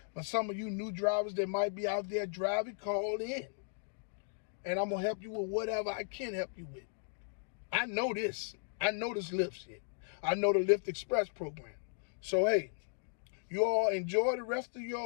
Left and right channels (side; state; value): right; silent; digital silence